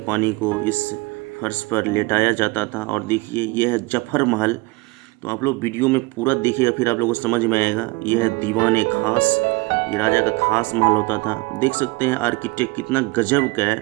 पानी को इस फर्श पर लेटाया जाता था। और देखिए ये है जफर महल। तो आप लोग वीडियो में पूरा देखिएगा, फिर आप लोगों को समझ में आएगा। ये है दीवान खास, ये राजा का खास महल होता था। देख सकते हैं आर्किटेक्ट कितना गजब का है,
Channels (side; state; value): left; quieter; 24.4 dB